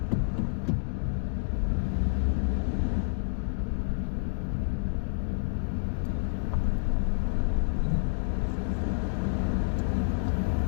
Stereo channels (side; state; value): right; silent; digital silence